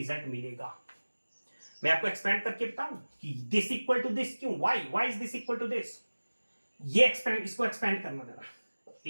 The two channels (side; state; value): both; inverted; correlation -1.00